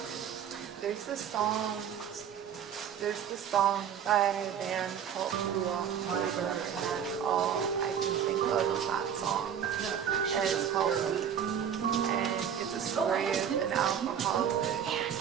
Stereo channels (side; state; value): left; quieter; 8.6 dB